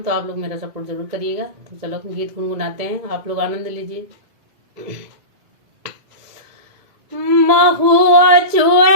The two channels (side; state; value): left; late; 2.2 ms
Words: तो आप लोग मेरा सपोर्ट जरूर करिएगा। तो चलो गीत गुनगुनाते हैं, आप लोग आनंद लीजिए। महुआ